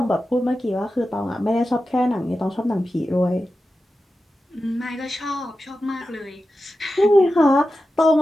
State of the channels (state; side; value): normal; both; correlation 0.92